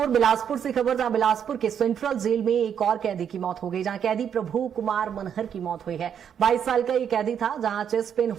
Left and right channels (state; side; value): quieter; left; 8.3 dB